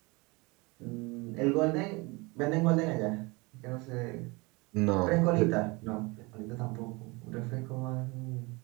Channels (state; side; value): quieter; left; 26.0 dB